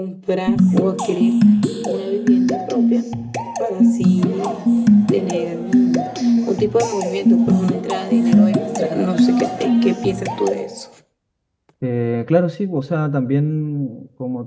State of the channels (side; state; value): both; identical; correlation 1.00